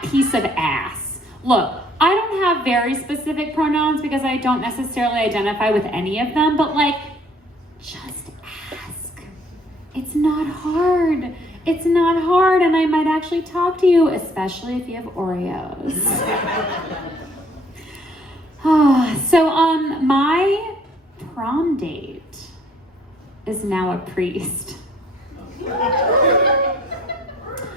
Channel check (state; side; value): normal; both; correlation 0.60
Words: piece of ass? Look, I don't have very specific pronouns because I don't necessarily identify with any of them, but like, just ask. It's not hard. It's not hard, and I might actually talk to you, especially if you have Oreos. So, my prom date is now a priest. But